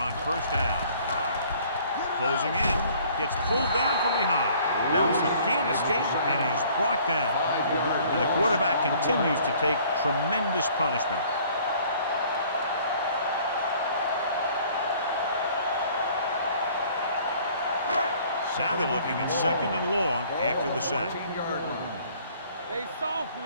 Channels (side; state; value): both; inverted; correlation -0.56